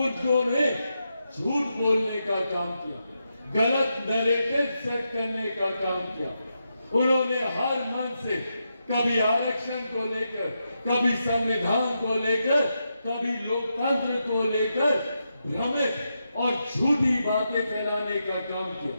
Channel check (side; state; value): both; inverted; correlation -0.85